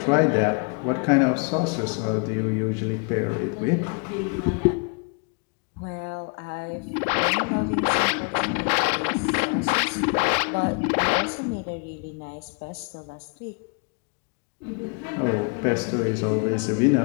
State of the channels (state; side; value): quieter; right; 35.6 dB